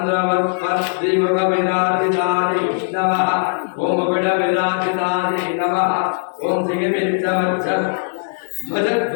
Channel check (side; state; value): right; silent; digital silence